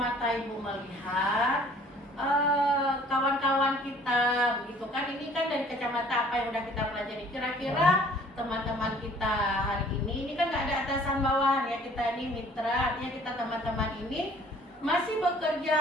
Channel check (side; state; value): both; normal; correlation 0.54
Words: Ibu melihat kawan-kawan kita, begitu kan, ini kan dari kacamata apa yang udah kita pelajari. Kira-kira teman-teman kita hari ini kan nggak ada atasan bawahan ya, kita ini mitra, artinya kita teman-teman ini masih